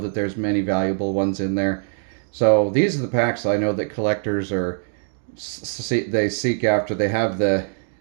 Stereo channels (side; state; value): left; silent; digital silence